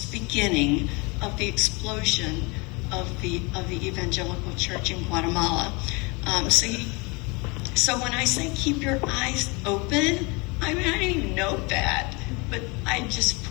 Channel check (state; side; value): quieter; right; 28.3 dB